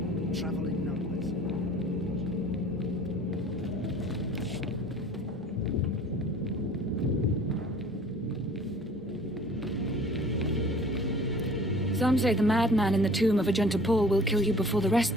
Travel in numbers. Some say the madman in the tomb of Agenta Paul will kill you before the rest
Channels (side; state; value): both; normal; correlation 0.49